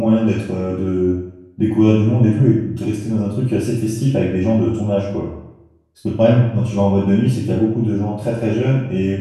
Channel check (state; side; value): identical; both; correlation 1.00